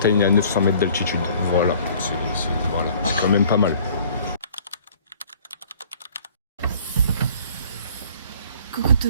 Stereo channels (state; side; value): inverted; both; correlation -0.53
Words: à 900 mètres d'altitude. Voilà, c'est quand même pas mal. Coucou tout